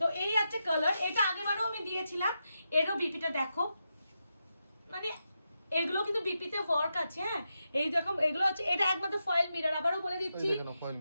তো এই আছে কালার, এটা আগেবারও আমি দিয়েছিলাম। এরও বিপিটা দেখো, মানে এগুলো কিন্তু বিপিতে ওয়ার্ক আছে। হ্যাঁ এই দেখো এগুলো হচ্ছে, এটা একমাত্র ফয়েল মিরর। আবারও বলে দিচ্ছি,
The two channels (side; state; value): both; inverted; correlation -0.87